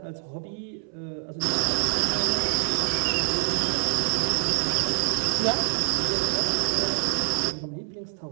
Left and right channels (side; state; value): left; silent; 59 dB below the other